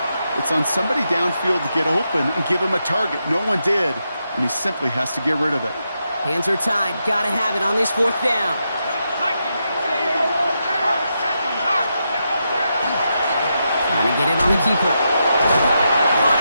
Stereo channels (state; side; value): inverted; both; correlation -0.85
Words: it's on somebody downfield to get open and give him a target. No one did, and he simply has to get rid of it. Hands are tied. Got to have it on this 4th down. Trying to get it on the keeper. Going